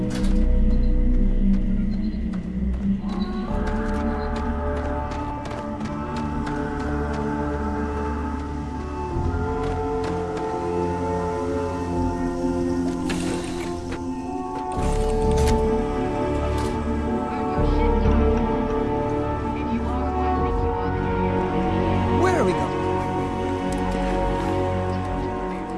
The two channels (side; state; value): both; identical; correlation 1.00